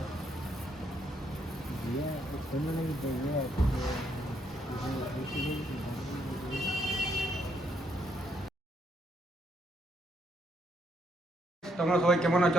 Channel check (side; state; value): both; normal; correlation 0.73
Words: দিয়ে কোনো লাগে দেখবে তোমরা সবাই কেমন আছো?